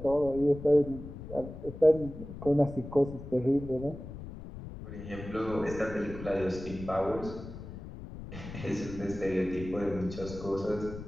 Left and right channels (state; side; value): noise; left; rumble, 12 dB below the sound